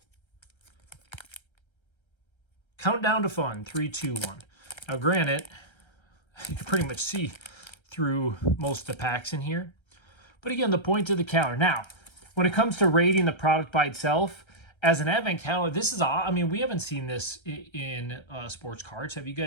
Countdown to fun, 3, 2, 1. Now, granted, you can pretty much see through most of the packs in here. But again, the point of the calendar. Now, when it comes to rating the product by itself, as an advent calendar, this is, I mean, we haven't seen this in sports cards. Have you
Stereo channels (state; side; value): late; right; 1.3 ms